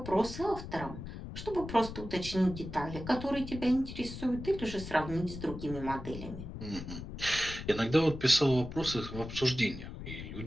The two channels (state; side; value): noise; left; rumble, 9 dB below the sound